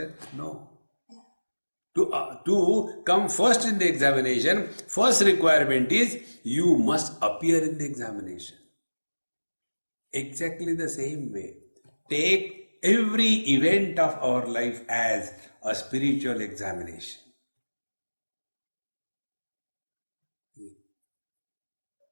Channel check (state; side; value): inverted; both; correlation -1.00